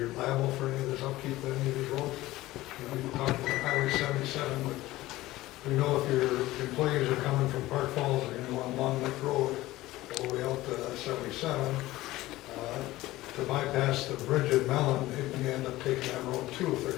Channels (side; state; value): right; quieter; 17.4 dB